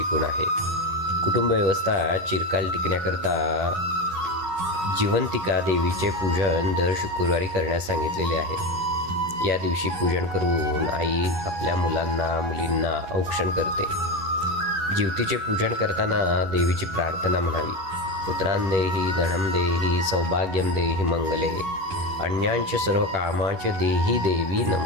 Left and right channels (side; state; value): left; late; 11 ms